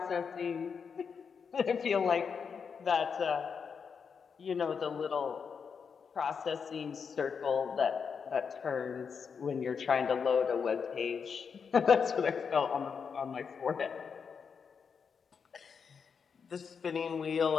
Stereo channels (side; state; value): right; quieter; 6.2 dB